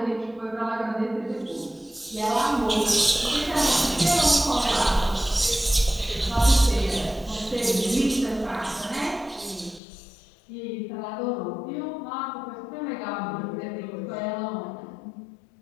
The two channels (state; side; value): drops out; right; at 9.8 s